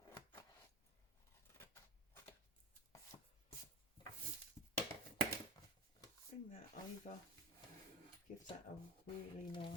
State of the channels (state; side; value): normal; both; correlation 0.25